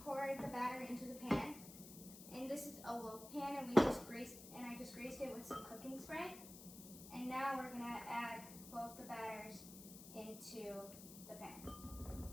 pour the batter into the pan, and this is a loaf pan, and I just greased it with some cooking spray. And now we're going to add both the batters into the pan.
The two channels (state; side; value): noise; left; hiss, 14 dB below the sound